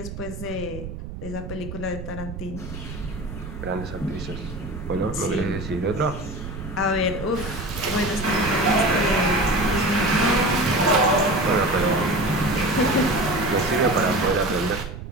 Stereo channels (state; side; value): noise; right; rumble, 10 dB below the sound